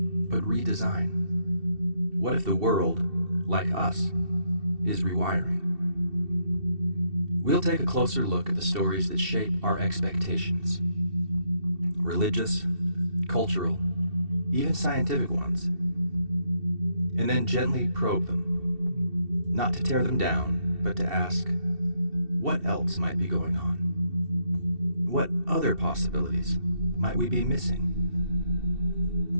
but redesign? What if the world, like us, is rewiring? We'll take a closer look at the stories that shape our expectations. Religious, cultural, even scientific ones. And then gently probe them. Not to tear them down, but to ask, what else might be going on? What other possibilities might we be missing?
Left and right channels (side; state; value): left; late; 2.7 ms